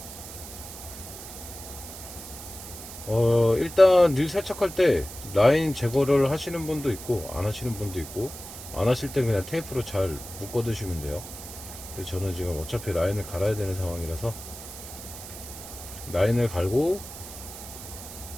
일단 릴 세척할 때 라인 제거를 하시는 분도 있고 안 하시는 분도 있고, 안 하실 땐 그냥 테이프로 잘 묶어 두시면 돼요. 근데 저는 지금 어차피 라인을 갈아야 되는 상황이라서 라인을 갈고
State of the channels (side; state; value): right; noise; hiss, 12 dB below the sound